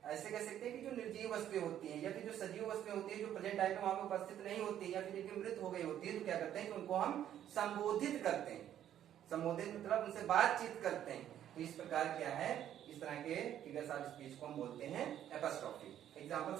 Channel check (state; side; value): quieter; left; 10.8 dB